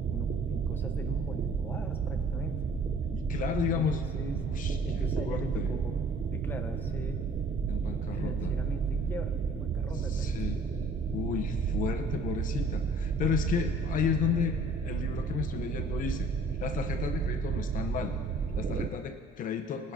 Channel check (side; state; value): both; normal; correlation 0.54